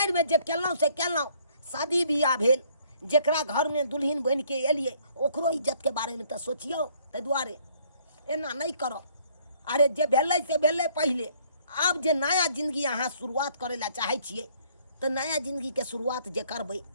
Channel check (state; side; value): inverted; both; correlation -0.63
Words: में जे केलौं से केलौं, शादी बियाह भेल, जेकरा घर में दुल्हन बन के एलिए ओकरो इज्जत के बारे में तो सोचियो, ताहि दुआरे एना नहीं करो। अरे जे भेलै से भेलै पहले, अब जे नया जिंदगी अहाँ शुरुआत करे ला चाहे छिए तो नया जिंदगी के शुरुआत जे करबै